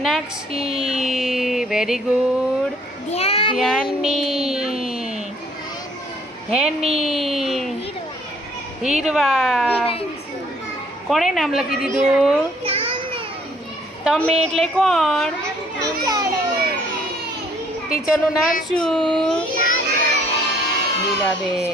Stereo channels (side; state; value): both; normal; correlation 0.61